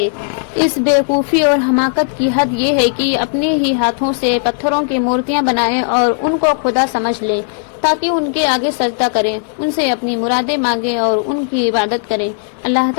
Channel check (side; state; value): right; silent; digital silence